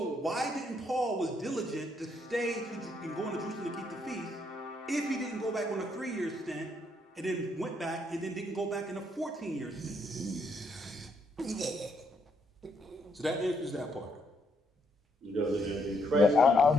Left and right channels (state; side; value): normal; both; correlation 0.74